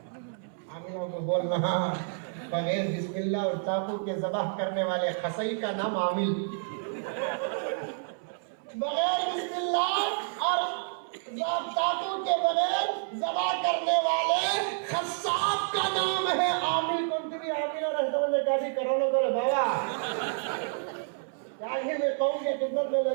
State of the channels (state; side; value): silent; left; 58 dB below the other